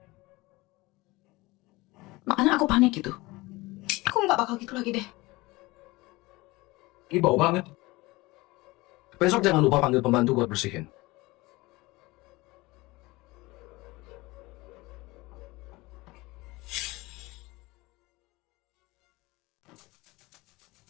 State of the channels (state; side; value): quieter; right; 21.7 dB